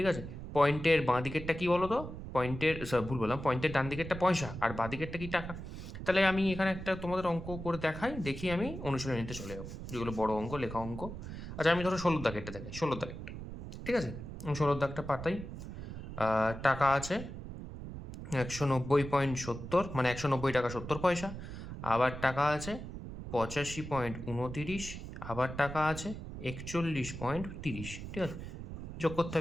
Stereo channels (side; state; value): right; noise; rumble, 9 dB below the sound